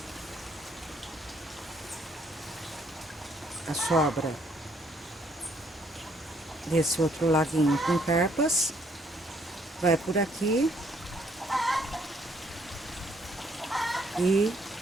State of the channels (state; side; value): normal; both; correlation 0.67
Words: A sobra desse outro laguinho com carpas vai por aqui e